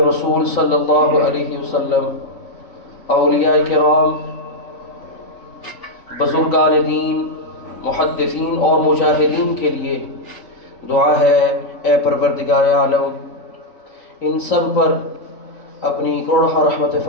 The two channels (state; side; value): late; right; 3.9 ms